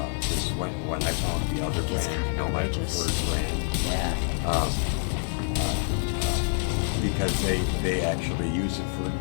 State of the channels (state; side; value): silent; right; 60 dB below the other